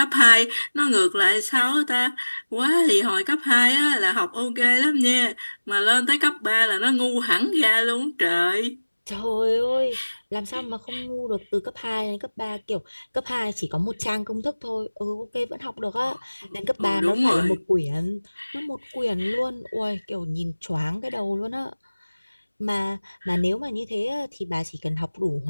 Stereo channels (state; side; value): inverted; both; correlation -1.00